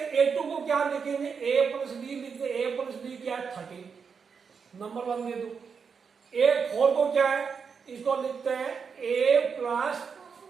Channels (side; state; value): left; quieter; 6.0 dB